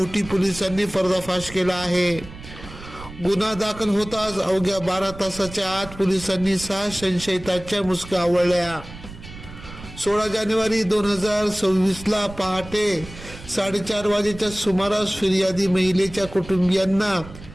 पोलिसांनी पर्दाफाश केला आहे. गुन्हा दाखल होताच अवघ्या 12 तासाच्या आत पोलिसांनी 6 संशयितांच्या मुसक्या आवळल्या. 16 जानेवारी 2026 ला पहाटे 4:30 वाजेच्या सुमारास फिर्यादी महिलेच्या कुटुंबियांना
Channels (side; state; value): right; noise; rumble, 15 dB below the sound